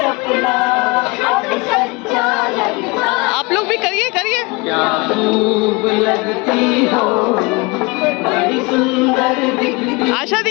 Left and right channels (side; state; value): right; quieter; 26.4 dB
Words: आप लोग भी करिए। क्या खूब लगती हो, बड़ी सुंदर दिखती। आशा